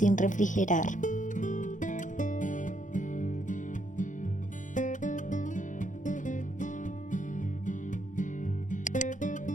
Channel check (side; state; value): right; late; 0.37 ms